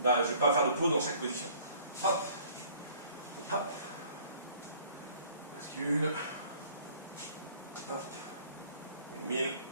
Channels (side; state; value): both; inverted; correlation -0.55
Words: Là, je ne vais pas faire de pause dans chaque position. Hop. Hop. Bascule. Hop. 1000.